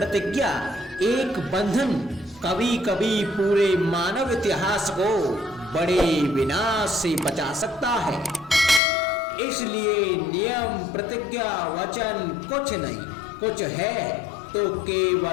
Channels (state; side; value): drops out; right; at 8.8 s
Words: एक बंधन कभी कभी पूरे मानव इतिहास को बड़े विनाश से बचा सकता है। इसलिए नियम, प्रतिज्ञा, वचन कुछ नहीं, कुछ है तो